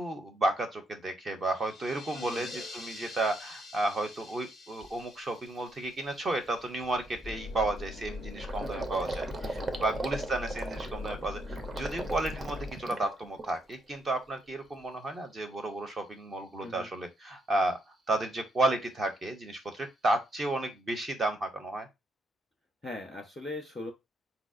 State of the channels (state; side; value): normal; both; correlation 0.75